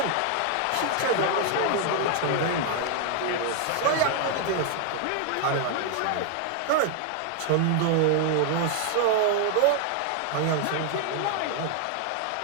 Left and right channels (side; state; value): both; different; correlation 0.00